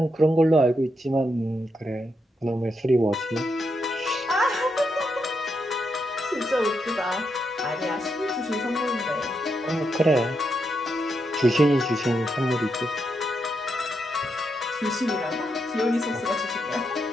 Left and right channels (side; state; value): both; normal; correlation 0.82